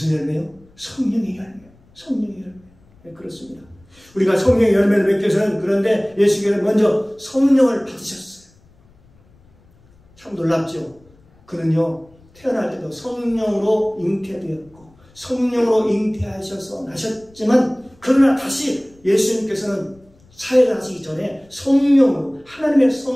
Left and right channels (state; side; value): noise; left; rumble, 30 dB below the sound